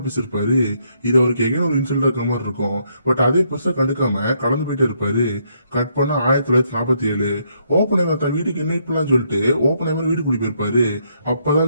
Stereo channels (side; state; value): both; inverted; correlation -0.73